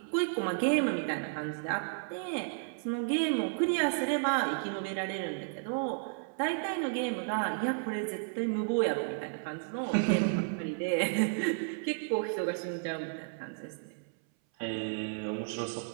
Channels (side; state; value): left; silent; 56 dB below the other